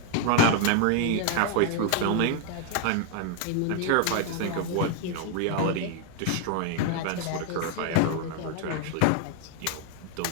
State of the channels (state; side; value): different; both; correlation 0.00